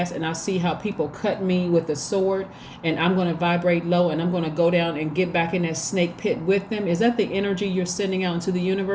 and I see how people cut me with a sword, and I'm going to vibrate low and I'm going to go down and get back in that snake pit with them? Is that the energy you're sending out into the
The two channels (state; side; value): identical; both; correlation 1.00